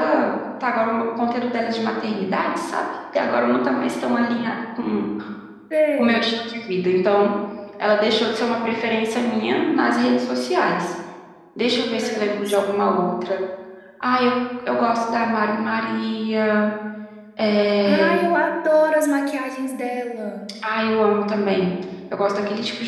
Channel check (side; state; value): both; identical; correlation 1.00